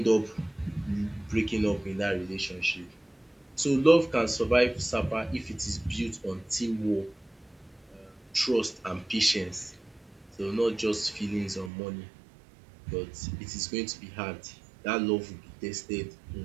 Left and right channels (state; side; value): drops out; left; at 11.7 s